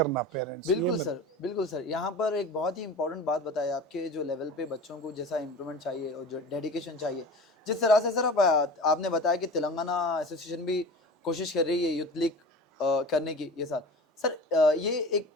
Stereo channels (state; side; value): normal; both; correlation 0.35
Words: पेरेंट्स। बिल्कुल सर, बिल्कुल सर। यहाँ पर एक बहुत ही इंपॉर्टेंट बात बताई आपके, जो लेवल पे बच्चों को जैसा इम्प्रूवमेंट चाहिए और जो डेडिकेशन चाहिए, जिस तरह से सर आपने बताया कि तेलंगाना एसोसिएशन भी कोशिश कर रही है यूथ लीग करने की ये साल। सर ये एक